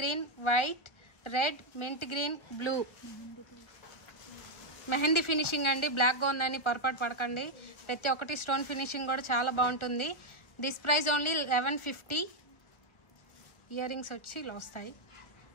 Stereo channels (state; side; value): late; right; 1.4 ms